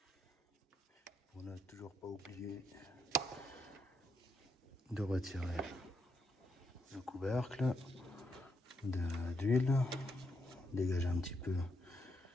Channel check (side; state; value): both; normal; correlation 0.79